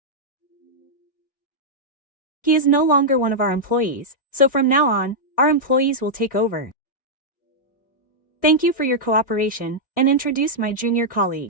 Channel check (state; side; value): late; right; 1.6 ms